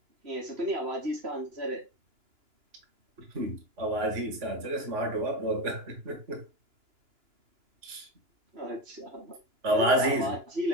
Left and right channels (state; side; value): late; left; 2.9 ms